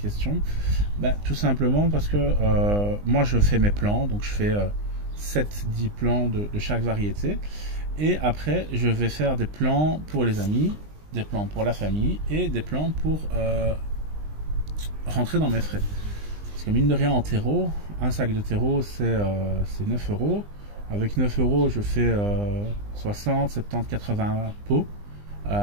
Ben, tout simplement parce que moi, je fais mes plants, donc je fais 7-10 plants de chaque variété. Et après, je vais faire des plans pour les amis, des plans pour la famille et des plans pour rentrer dans mes frais. Parce que mine de rien, en terreau, un sac de terreau, c'est 9 euros. Avec 9 euros, je fais 60, 70, 80 pots.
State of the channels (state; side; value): late; left; 20 ms